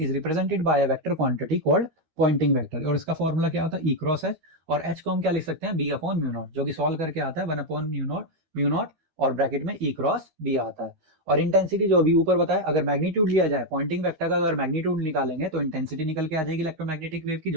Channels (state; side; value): late; left; 13 ms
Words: represented by a vector quantity called Poynting vector, और इसका फॉर्मूला क्या होता है, ई क्रॉस एच, और एच को हम क्या लिख सकते हैं, बी अपॉन म्यू नॉट, जो कि सॉल्व करके आता है 1 अपॉन म्यू नॉट और ब्रैकेट में ई क्रॉस बी आता है। और इंटेंसिटी जो अभी ऊपर बताया, अगर मैग्नीट्यूड लिया जाए पॉइंटिंग वेक्टर का, अगर मैग्नीट्यूड निकालेंगे तो इंटेंसिटी निकल के आ जाएगी इलेक्ट्रोमैग्नेटिक वेव की,